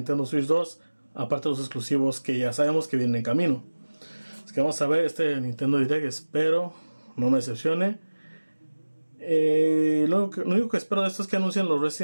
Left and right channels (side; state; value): both; inverted; correlation -1.00